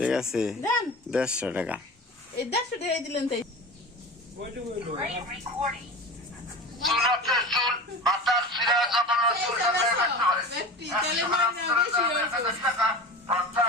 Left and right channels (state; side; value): normal; both; correlation 0.32